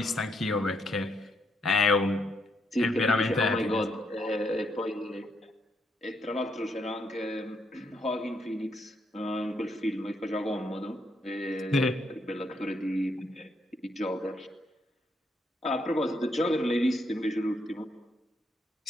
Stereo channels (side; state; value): both; normal; correlation 0.76